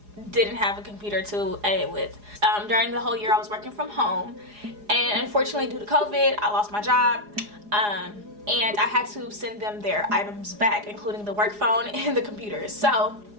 didn't have a computer to edit with. During the whole year I was working from home, and unfortunately due to COVID I lost my job, and I had to send them their items back, including the work phone and the computer. So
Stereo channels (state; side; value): late; left; 4.8 ms